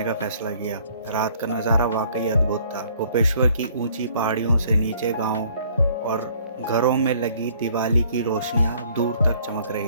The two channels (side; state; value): both; inverted; correlation -0.59